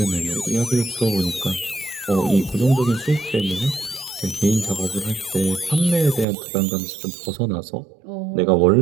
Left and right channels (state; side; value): drops out; left; at 6.2 s